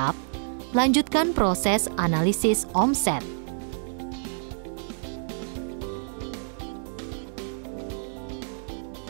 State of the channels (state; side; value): silent; left; digital silence